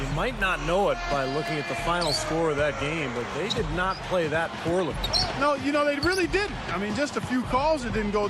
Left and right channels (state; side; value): identical; both; correlation 1.00